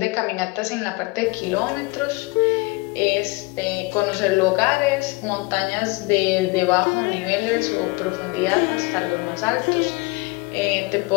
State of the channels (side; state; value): right; quieter; 25.3 dB